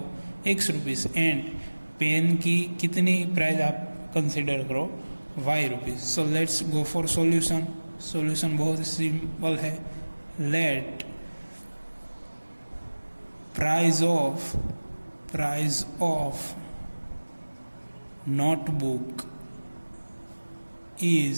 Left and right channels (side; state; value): both; inverted; correlation -1.00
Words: x रुपीज़, एंड पेन की कितनी प्राइस आप कंसिडर करो y rupees. So let's go for solution. Solution बहुत ही सिंपल है. Late price of notebook